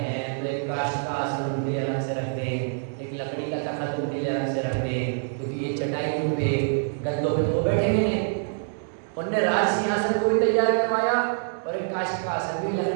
तो एक काष्ठ का आसन उनके लिए अलग से रख दें, एक लकड़ी का तख्त उनके लिए अलग से रख दें, क्योंकि ये चटाइयों पे गद्दों पे तो वो बैठेंगे नहीं। उनने राज सिंहासन को भी तैयार करवाया और एक काष्ठ का आसन भी,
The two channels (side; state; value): left; silent; digital silence